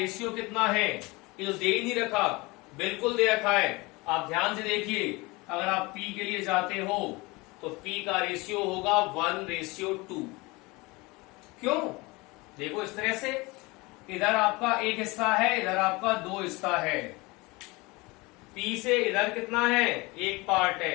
कितना है। ये तो दे ही नहीं रखा, बिल्कुल दे रखा है। आप ध्यान से देखिए, अगर आप P के लिए जाते हो तो P का रेशियो होगा 1:2। क्यों? देखो इस तरह से, इधर आपका एक हिस्सा है, इधर आपका 2 हिस्सा है। P से इधर कितना है, 1 पार्ट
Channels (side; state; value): right; quieter; 24.1 dB